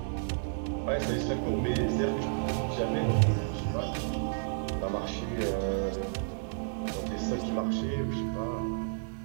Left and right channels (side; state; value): left; silent; digital silence